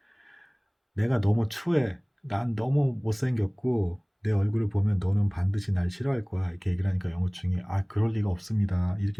내가 너무 추해. 난 너무 못생겼고 내 얼굴을 보면 너는 반드시 날 싫어할 거야. 이렇게 얘기를 하니까 영호충이 그럴 리가 없습니다.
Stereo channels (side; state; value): both; identical; correlation 1.00